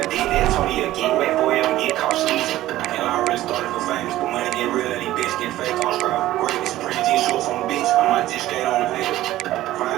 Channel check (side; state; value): left; quieter; 15.1 dB